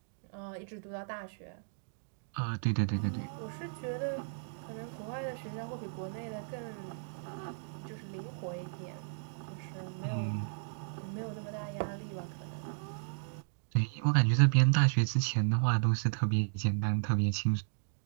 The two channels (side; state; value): left; silent; digital silence